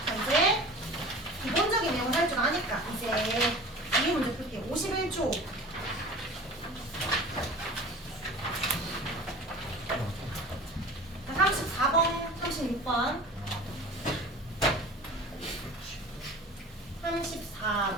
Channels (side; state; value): both; normal; correlation 0.39